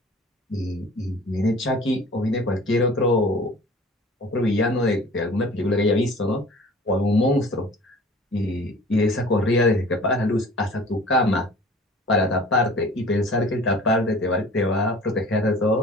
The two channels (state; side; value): normal; both; correlation 0.46